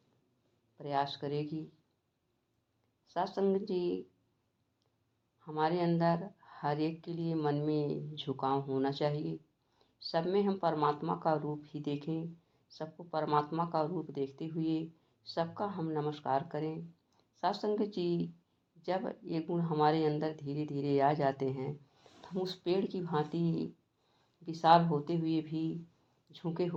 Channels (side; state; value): both; identical; correlation 1.00